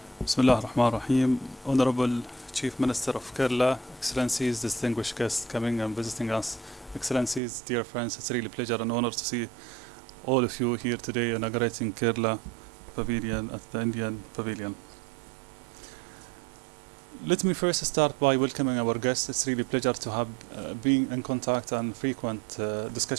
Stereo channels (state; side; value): drops out; left; at 7.4 s